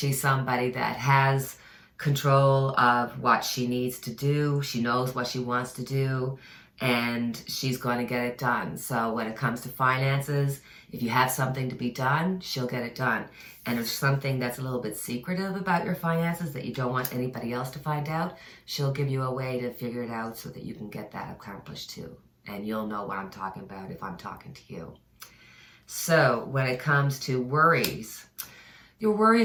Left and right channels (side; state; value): both; identical; correlation 1.00